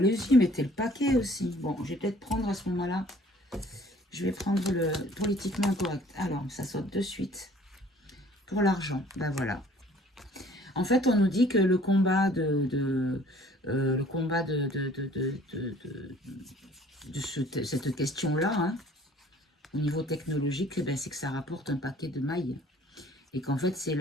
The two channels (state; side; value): normal; both; correlation 0.54